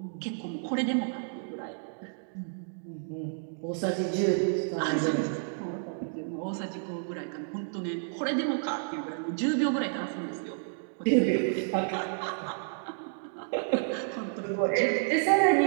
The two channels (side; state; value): left; silent; digital silence